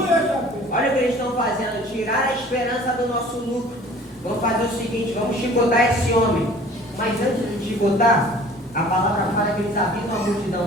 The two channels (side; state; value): both; normal; correlation 0.49